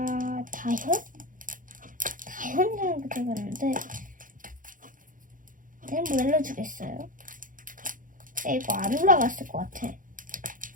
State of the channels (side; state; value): left; late; 0.39 ms